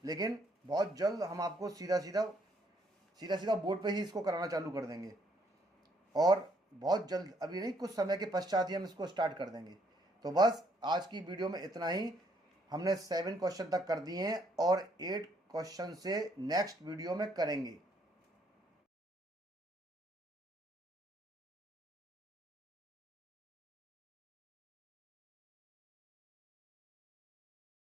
लेकिन बहुत जल्द हम आपको सीधा सीधा बोर्ड पे ही इसको कराना चालू कर देंगे, और बहुत जल्द, अभी नहीं, कुछ समय के पश्चात ही हम इसको स्टार्ट कर देंगे। तो बस आज की वीडियो में इतना ही। हमने 7 क्वेश्चन तक कर दिए हैं और 8 क्वेश्चन से नेक्स्ट वीडियो में करेंगे।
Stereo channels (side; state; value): both; normal; correlation 0.69